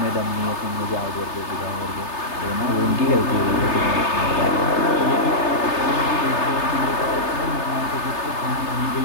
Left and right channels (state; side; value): late; right; 3.3 ms